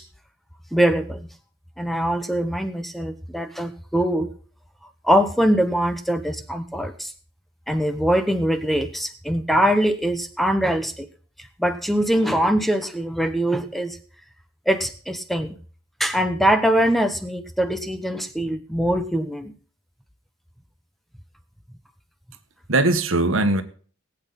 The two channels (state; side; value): normal; both; correlation 0.79